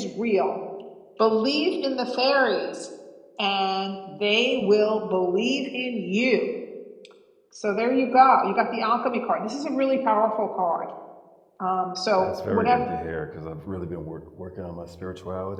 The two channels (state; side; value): identical; both; correlation 1.00